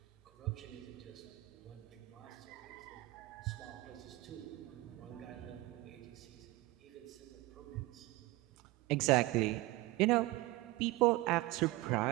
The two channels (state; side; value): quieter; left; 19.6 dB